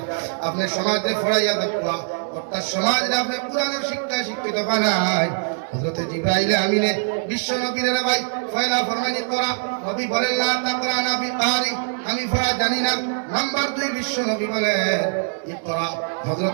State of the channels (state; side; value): silent; left; digital silence